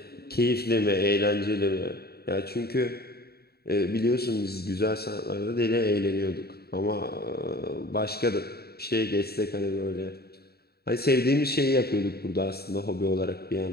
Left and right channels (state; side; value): late; right; 0.46 ms